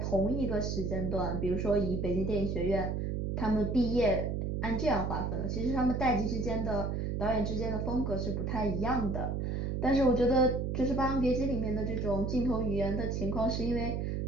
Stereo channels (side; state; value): right; noise; hum, 1 dB below the sound